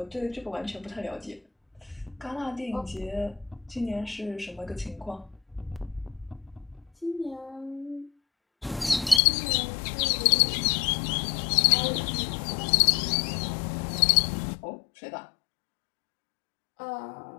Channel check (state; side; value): drops out; right; at 9.2 s